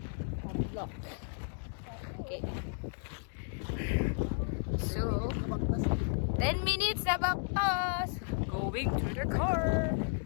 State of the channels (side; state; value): right; silent; 55 dB below the other